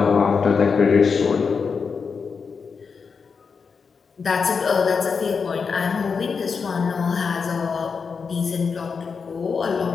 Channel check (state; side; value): quieter; right; 5.5 dB